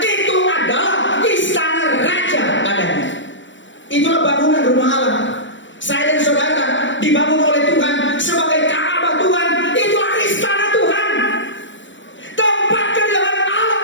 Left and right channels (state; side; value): late; right; 0.55 ms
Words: itu adalah istana raja adanya. Itulah bangunan rumah Allah. Saya dan saudara dibangun oleh Tuhan sebagai Ka'bah Tuhan. Itulah istana Tuhan. Tempat kediaman Allah